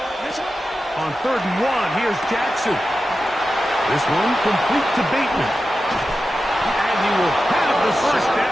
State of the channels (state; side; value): normal; both; correlation 0.92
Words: On 3rd and 1, here's Jackson. This one complete to Bateman. And he will have the first